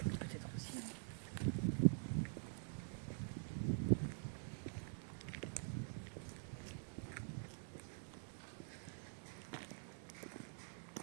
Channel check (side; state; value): left; silent; digital silence